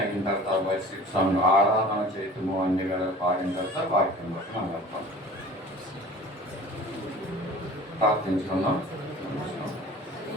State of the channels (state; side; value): normal; both; correlation 0.43